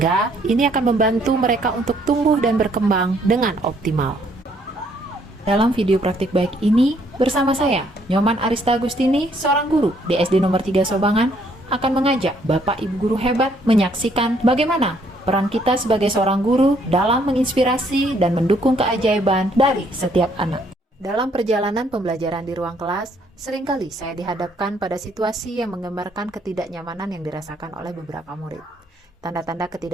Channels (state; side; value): normal; both; correlation 0.67